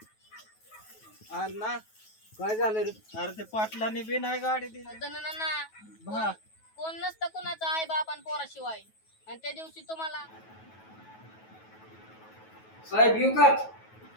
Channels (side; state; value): right; late; 9.3 ms